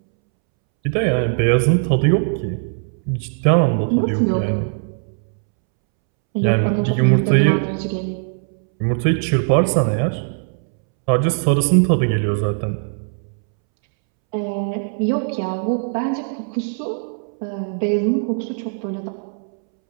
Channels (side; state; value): left; silent; 66 dB below the other